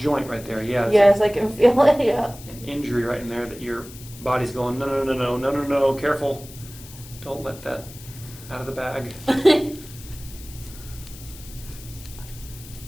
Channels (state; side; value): noise; left; hiss, 17 dB below the sound